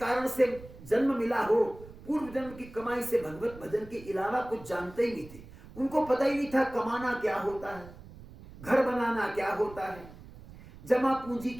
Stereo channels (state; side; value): noise; right; rumble, 18 dB below the sound